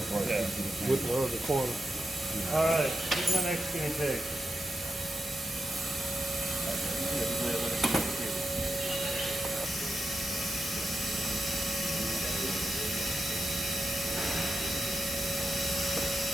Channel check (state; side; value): normal; both; correlation 0.88